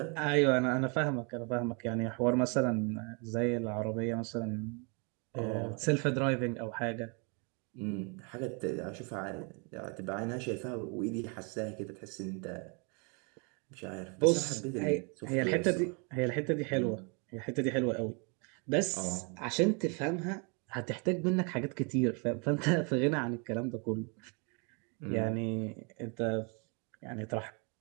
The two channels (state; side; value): quieter; left; 34.6 dB